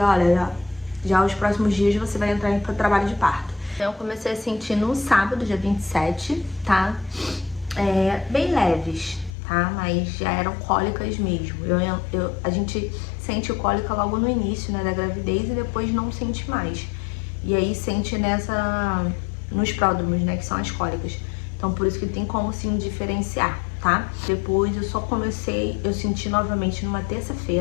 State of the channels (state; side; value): drops out; right; at 9.3 s